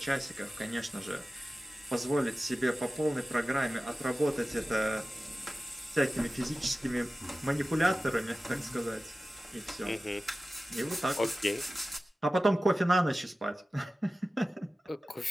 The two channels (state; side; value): normal; both; correlation 0.96